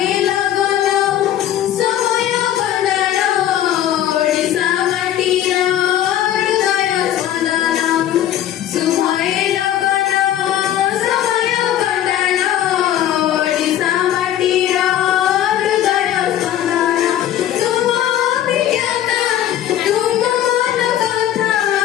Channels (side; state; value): right; quieter; 11.7 dB